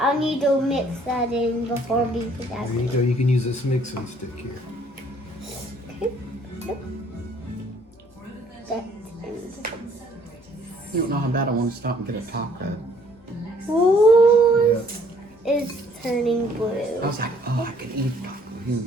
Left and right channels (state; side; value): normal; both; correlation 0.61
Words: need to mix that in before we put that There you in. go. You can use this mixing stick here. Okay. Yep. That's You don't know how bad I want to stop and get a taco. Ooh, Yeah. it's turning I blue. was like, oh, I could eat a taco. You